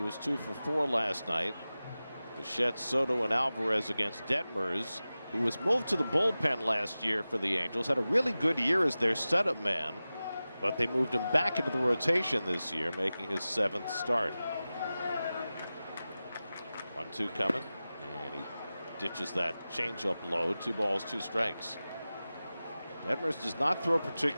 was 2 for 4 last night. Bichette, Soto, and Alvarez against Detmers, who was moved to the bullpen last year for the Angels. Had a really good year as their setup man, but they moved him back into the rotation this year, making his 7th start. 1-2 coming, and he ditches that changeup low. 2 balls, 2 strikes. Detmers does not throw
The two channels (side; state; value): both; inverted; correlation -0.96